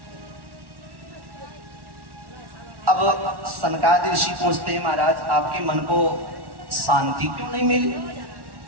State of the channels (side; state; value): left; late; 1.1 ms